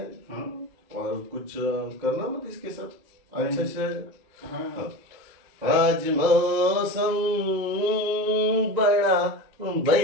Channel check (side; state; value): left; late; 2.0 ms